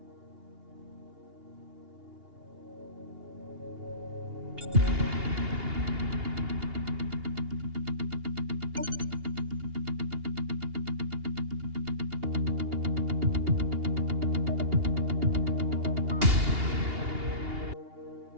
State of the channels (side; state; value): left; late; 2.8 ms